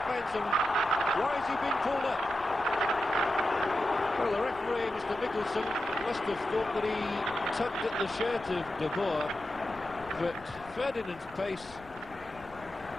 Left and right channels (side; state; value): left; noise; rumble, 21 dB below the sound